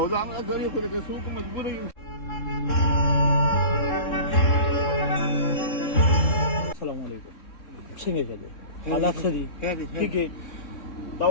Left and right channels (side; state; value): right; late; 3.7 ms